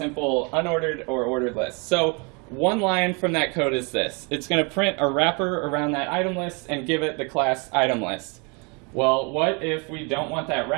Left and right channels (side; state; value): left; quieter; 32.1 dB